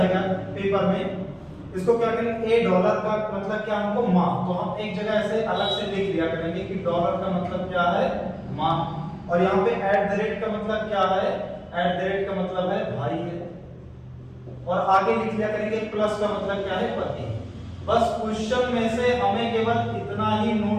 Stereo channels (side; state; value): both; identical; correlation 1.00